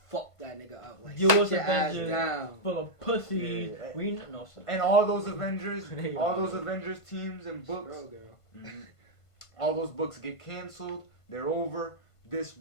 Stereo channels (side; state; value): right; late; 1.5 ms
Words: Fuck that nigga up. Like, U.S. sit your ass Avengers down. full of pussy. Yeah. We no. And all those Avengers teams and books. Mm-hmm. All those books get canceled. They're over. This